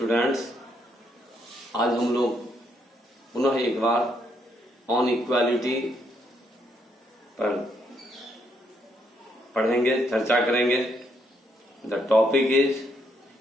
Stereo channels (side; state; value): both; normal; correlation 0.74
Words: आज हम लोग पुनः एक बार ऑन इक्वालिटी पर पढ़ेंगे, चर्चा करेंगे। The topic is